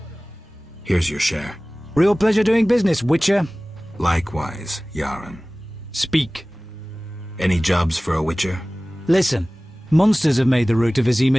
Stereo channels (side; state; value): both; normal; correlation 0.98